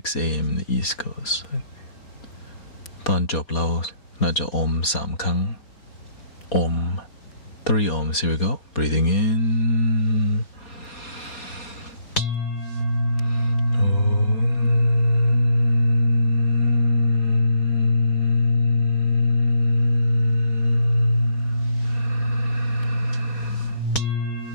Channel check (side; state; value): right; late; 4.2 ms